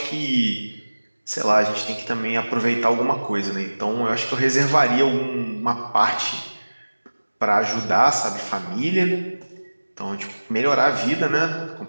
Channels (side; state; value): both; inverted; correlation -1.00